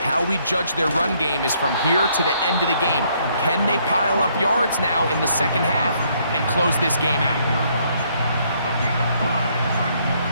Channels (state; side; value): inverted; both; correlation -0.69